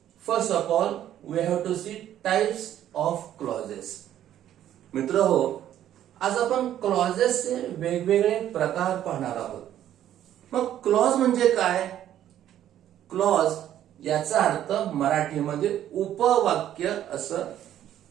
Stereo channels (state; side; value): quieter; left; 11.5 dB